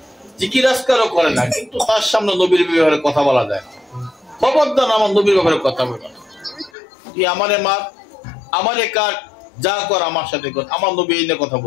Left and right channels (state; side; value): drops out; right; at 6.7 s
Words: জিকির আজকারও করে না, কিন্তু তার সামনে নবীর ব্যাপারে কথা বলা যায় না। খবরদার আমার নবীর ব্যাপারে কথা বলবে না। তুই আমারে মার, আমারে কাট, যা কর আমার সাথে কর, আমার নবী এই নিয়ে কথা